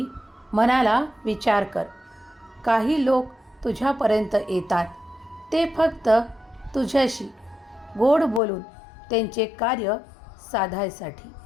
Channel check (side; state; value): right; drops out; at 8.4 s